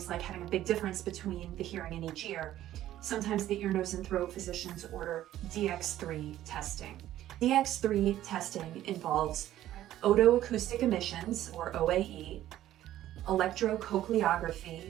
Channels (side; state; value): left; quieter; 13.2 dB